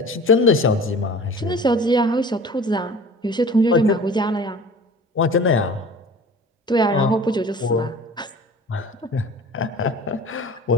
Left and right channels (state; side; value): normal; both; correlation 0.42